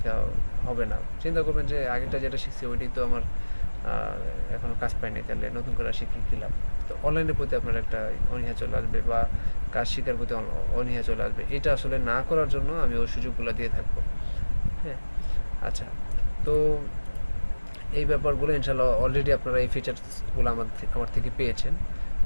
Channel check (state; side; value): inverted; both; correlation -1.00